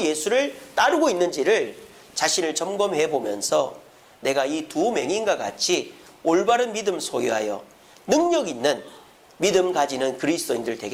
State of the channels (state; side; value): identical; both; correlation 1.00